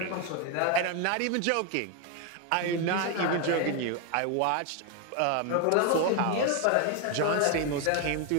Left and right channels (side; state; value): both; different; correlation 0.01